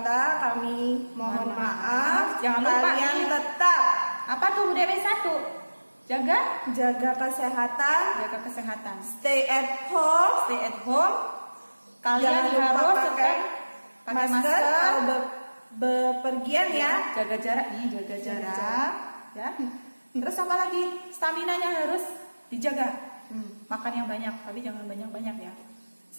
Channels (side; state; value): both; inverted; correlation -1.00